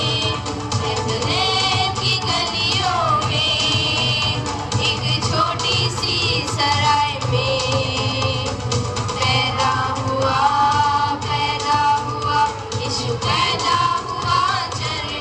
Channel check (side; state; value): both; identical; correlation 1.00